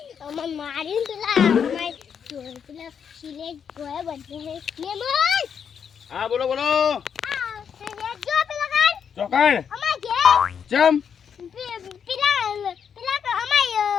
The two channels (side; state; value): right; quieter; 7.4 dB